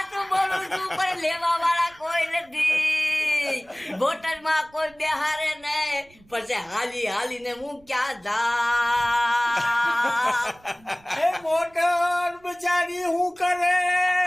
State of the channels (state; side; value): noise; right; rumble, 29 dB below the sound